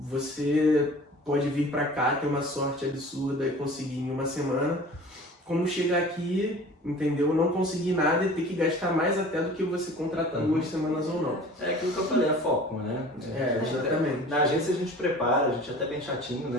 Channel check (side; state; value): both; normal; correlation 0.44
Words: Você pode vir para cá, ter uma sorte absurda e conseguir em 1 semana, como chegar aqui, entendeu? Não conseguir nada e ter que gastar mais até do que você contratar 2 semanas ou não. É aquilo que eu falei, é foco, né? Exatamente. Na agência a gente prepara, a gente é até bem chatinho,